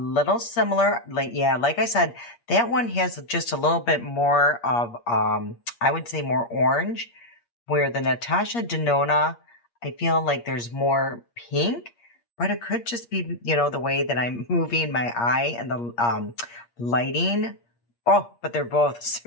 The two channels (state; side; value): late; right; 8.5 ms